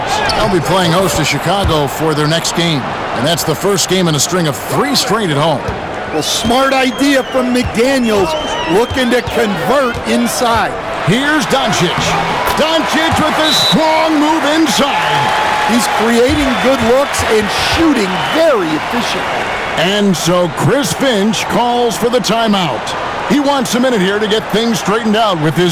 They'll be playing host to Chicago for their next game. And that's the first game in a string of 3 straight at home. Well, smart idea from McDaniels, looking to convert inside. Here's Doncic. Doncic with a strong move inside. He's creating good looks and shooting very efficiently. And so Chris Finch calls for the timeout. He wants a minute here to get things straightened out with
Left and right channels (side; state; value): both; identical; correlation 1.00